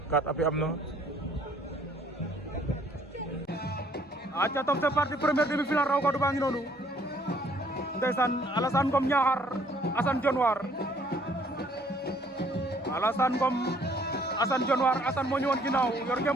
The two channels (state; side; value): normal; both; correlation 0.62